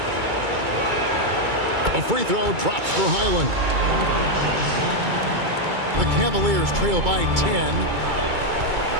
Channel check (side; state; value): left; late; 2.3 ms